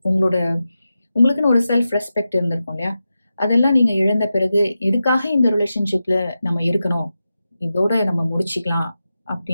உங்களுக்குன்னு ஒரு செல்ஃப் ரெஸ்பெக்ட் இருந்திருக்கும் இல்லையா? அதெல்லாம் நீங்க இழந்த பிறகு எதுக்காக இந்த ரிலேஷன்ஷிப்ல நம்ம இருக்கணும், இதோட நம்ம முடிச்சுக்கலாம்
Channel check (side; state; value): both; inverted; correlation -0.91